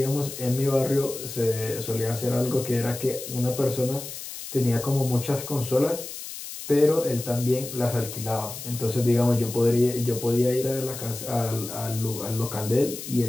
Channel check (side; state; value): left; noise; hiss, 10 dB below the sound